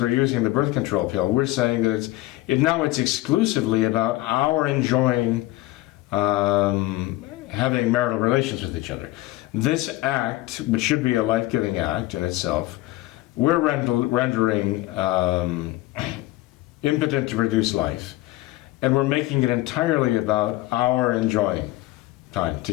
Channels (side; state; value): right; quieter; 17.9 dB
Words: we're using the birth control pill, we're saying that it's exclusively about our enjoying having marital relations with each other. This act, which should be a life-giving act in itself, we're rendering impotent to produce life, and we're making it entirely about our enjoying time